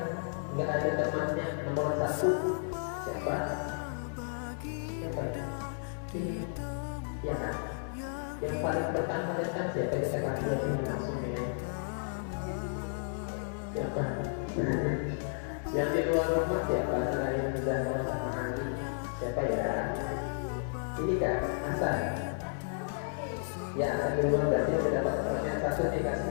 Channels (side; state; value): right; silent; 56 dB below the other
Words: nggak ada temannya, nomor 1 siapa? Siapa ya? Ya kan? Yang paling pertama datang siapa? Kita kasih ini langsung ya. Siapa? Yang di luar rumah siapa? Selain Zahra sama Ali, siapa ya? Ini kan Hasan. Ya, Hasan duluan berarti sudah dapat pertanyaan 1